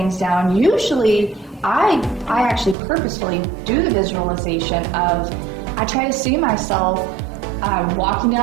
down, usually I actually purposefully do the visualization of, I try to see myself walking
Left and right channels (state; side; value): drops out; left; at 2.8 s